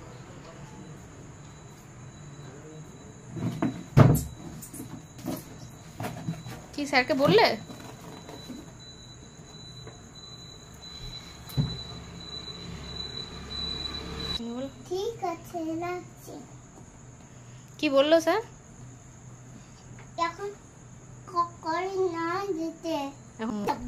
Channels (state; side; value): identical; both; correlation 1.00